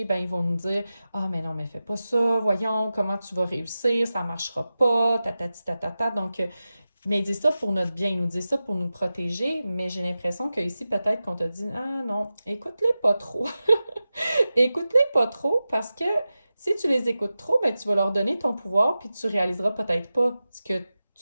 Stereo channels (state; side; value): inverted; both; correlation -0.94